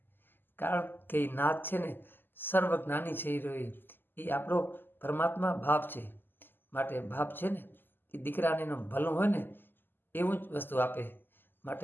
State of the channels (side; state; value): right; late; 0.094 ms